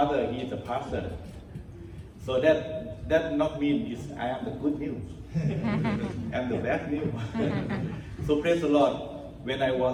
he is a pastor. So that not mean is I am the good news. I'm the bad news. So praise the Lord. When I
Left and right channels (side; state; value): both; identical; correlation 1.00